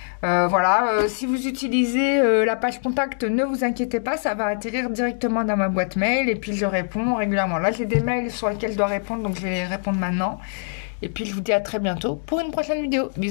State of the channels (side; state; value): right; silent; digital silence